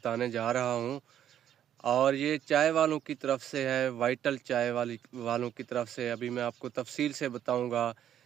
जा रहा हूं और ये चाय वालों की तरफ से है, वाइटल चाय वालों की तरफ से। अभी मैं आपको तफसील से बताऊंगा।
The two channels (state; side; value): quieter; left; 10.4 dB